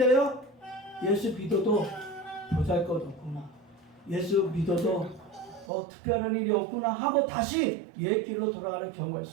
예수 믿어도 보잘것없구나. 예수 믿어도 특별한 일이 없구나 하고 다시 옛 길로 돌아가는 경우가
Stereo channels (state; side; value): drops out; left; at 5.7 s